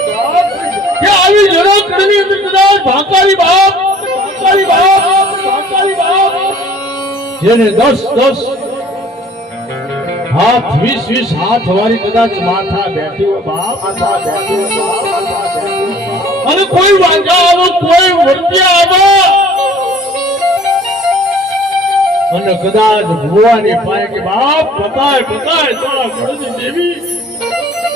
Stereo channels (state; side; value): normal; both; correlation 0.52